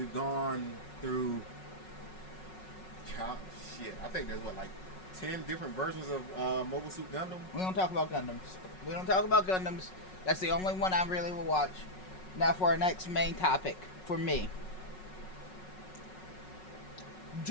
gone through I think there's what, like 10 different versions of Mobile Suit Gundam. We don't talk about Gundams. That's the only one I really will watch. Now for our next main topic for me.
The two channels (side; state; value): right; late; 5.4 ms